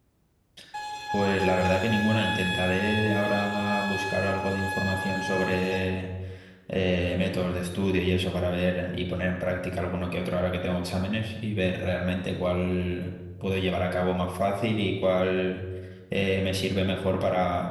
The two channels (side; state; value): both; identical; correlation 1.00